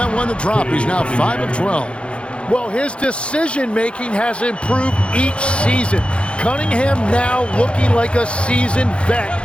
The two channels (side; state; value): right; late; 0.058 ms